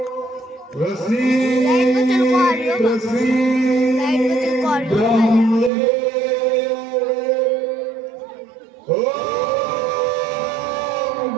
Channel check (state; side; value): drops out; left; at 5.7 s